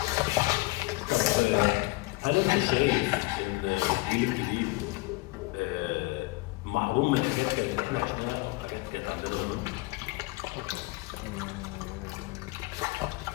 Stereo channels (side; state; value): right; quieter; 22.0 dB